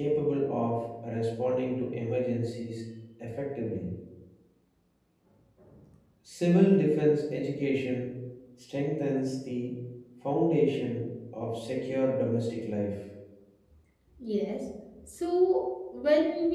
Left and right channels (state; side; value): identical; both; correlation 1.00